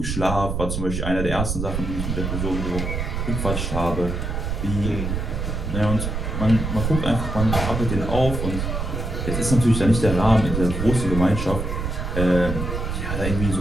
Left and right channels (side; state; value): right; noise; rumble, 3 dB below the sound